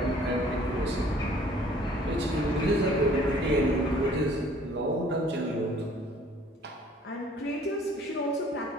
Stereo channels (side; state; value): both; normal; correlation 0.55